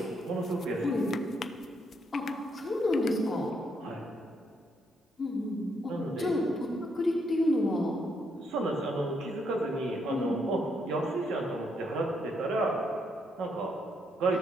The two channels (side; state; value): both; normal; correlation 0.76